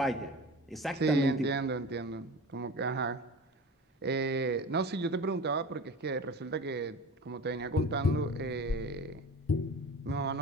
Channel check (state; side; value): normal; both; correlation 0.34